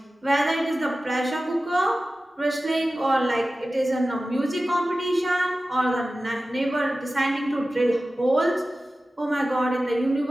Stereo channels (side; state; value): both; normal; correlation 0.95